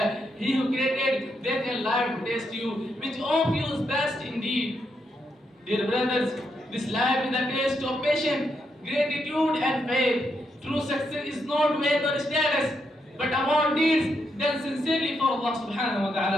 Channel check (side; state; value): both; normal; correlation 0.80